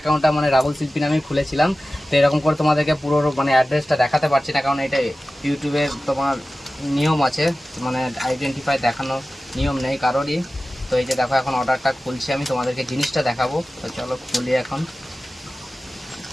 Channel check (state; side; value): normal; both; correlation 0.96